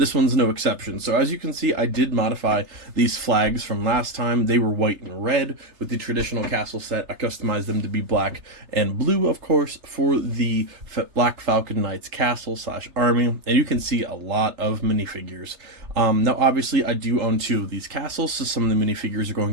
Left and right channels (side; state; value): left; late; 3.3 ms